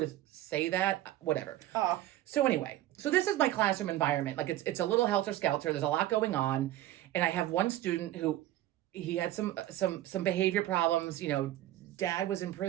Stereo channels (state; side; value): quieter; left; 14.2 dB